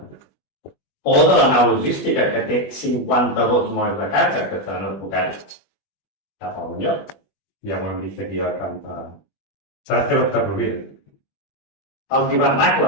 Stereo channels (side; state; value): right; late; 21 ms